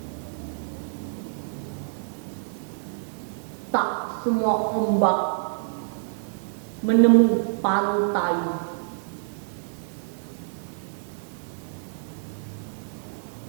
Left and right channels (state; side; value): silent; left; digital silence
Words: Tak semua ombak menemu pantai.